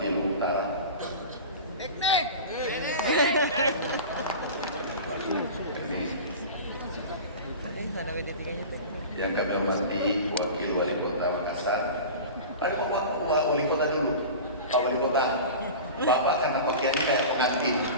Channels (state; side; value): inverted; both; correlation -0.33